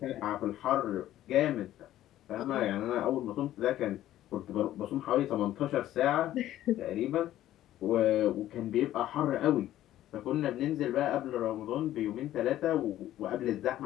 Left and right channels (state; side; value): quieter; right; 13.3 dB